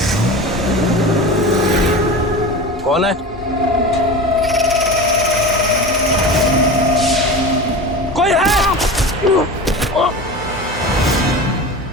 कौन है? कोई है?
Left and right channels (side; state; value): both; normal; correlation 0.30